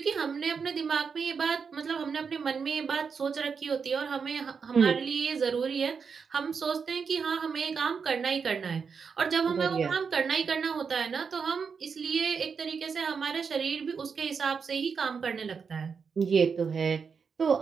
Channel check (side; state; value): left; quieter; 5.9 dB